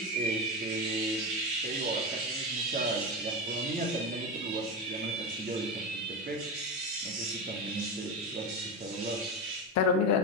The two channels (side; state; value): both; normal; correlation 0.17